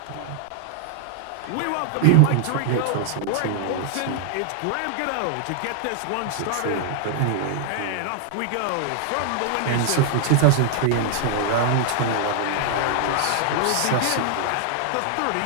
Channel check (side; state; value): both; different; correlation 0.00